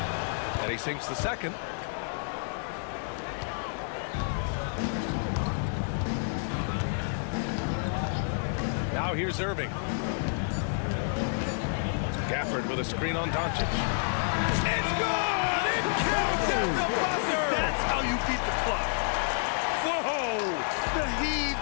And he sinks the second. Now here's Irving. Gafford with a screen on Doncic. It's good! It counts at the buzzer! That's how you beat the clock. Whoa! The heave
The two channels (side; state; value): right; silent; digital silence